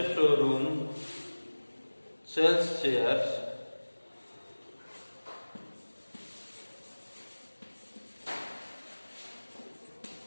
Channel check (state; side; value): inverted; both; correlation -1.00